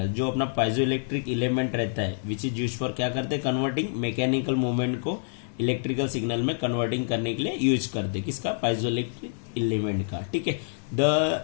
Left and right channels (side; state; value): right; silent; digital silence